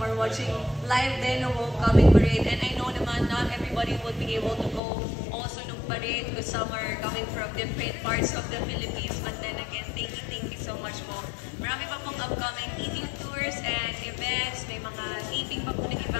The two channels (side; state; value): right; drops out; at 4.8 s